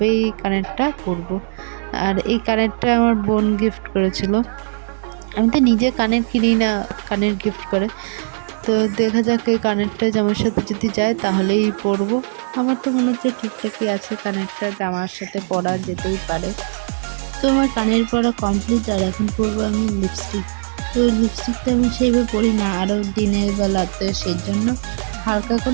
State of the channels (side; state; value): left; silent; 66 dB below the other